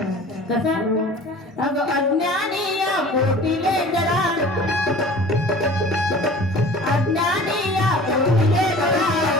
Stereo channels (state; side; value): normal; both; correlation 0.43